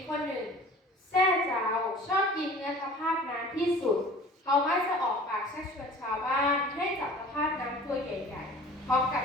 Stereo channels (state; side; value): normal; both; correlation 0.44